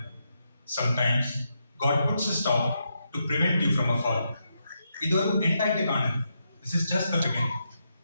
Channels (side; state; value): both; inverted; correlation -0.82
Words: Sometimes God puts a stop to prevent you from a fall. ഇതൊരു എൻഡായിട്ട് കാണുന്നു. This is just the beginning.